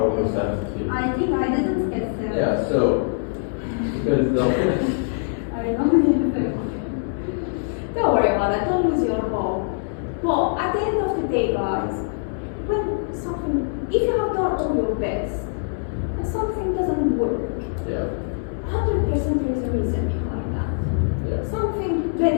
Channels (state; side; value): silent; right; digital silence